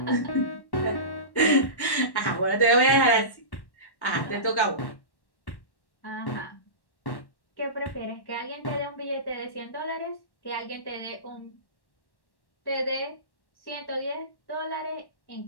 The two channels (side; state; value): right; late; 1.1 ms